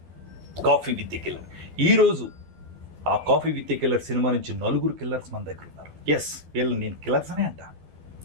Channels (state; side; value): late; left; 12 ms